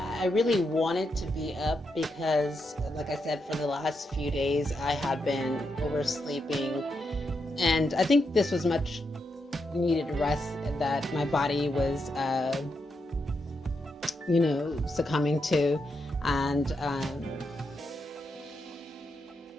I really wanted to be up because, like I said, for the last few days I had been oversleeping, and I think this was much needed rest that my body was, succumbing to, and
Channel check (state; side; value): normal; both; correlation 0.83